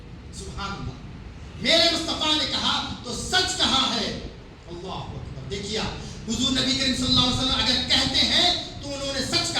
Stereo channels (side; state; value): both; identical; correlation 1.00